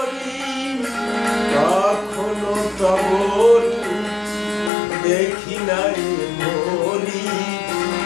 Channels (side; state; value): right; drops out; at 4.7 s